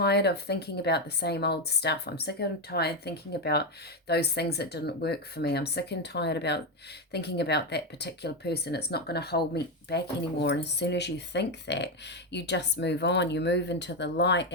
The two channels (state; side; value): normal; both; correlation 0.08